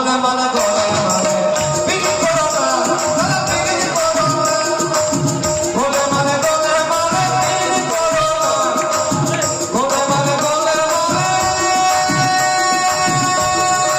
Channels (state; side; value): identical; both; correlation 1.00